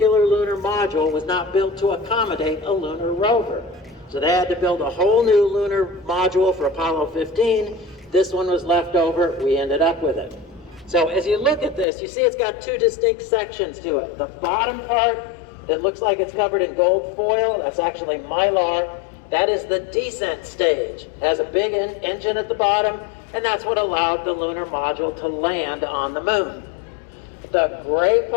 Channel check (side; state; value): right; drops out; at 11.9 s